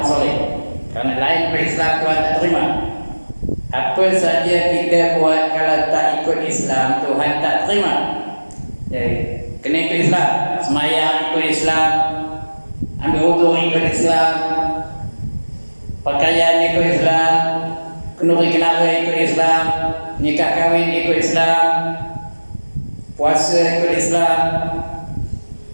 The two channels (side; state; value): both; inverted; correlation -1.00